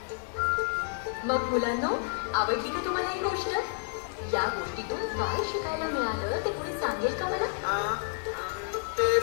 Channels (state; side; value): silent; right; 57 dB below the other